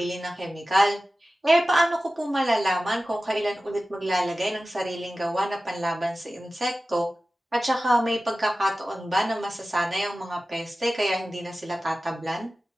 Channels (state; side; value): normal; both; correlation 0.95